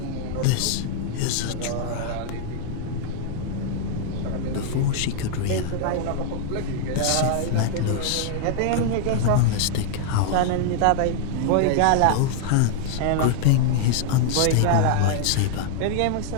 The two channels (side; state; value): both; different; correlation -0.01